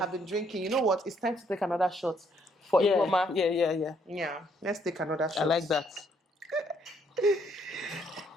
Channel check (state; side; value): normal; both; correlation 0.69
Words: been drinking. You know what? It's time to take another shot for Ihoma. Yeah. Let's take another shot. I like that.